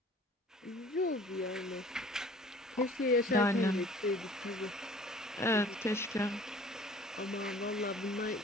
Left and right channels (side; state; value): both; normal; correlation 0.49